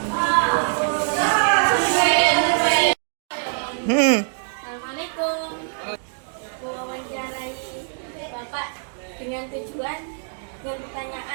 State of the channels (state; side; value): silent; left; 63 dB below the other